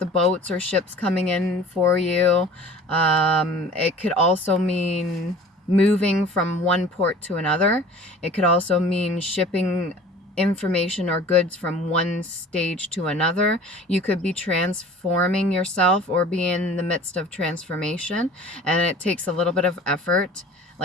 boats or ships coming in for you. It could also mean moving from one port to another. It could also mean shipping information or goods from one stage to another. You could be transforming yourself or be in the midst of transformation, and it takes a little bit of effort,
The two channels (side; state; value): both; normal; correlation 0.45